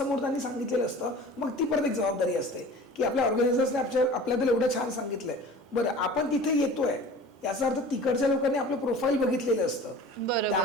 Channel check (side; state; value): both; normal; correlation 0.41